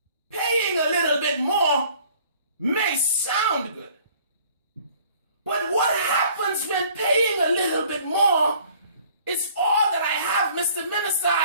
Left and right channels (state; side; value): inverted; both; correlation -0.55